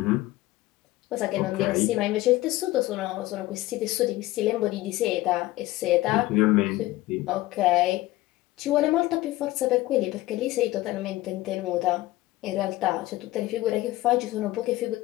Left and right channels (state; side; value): quieter; right; 17.7 dB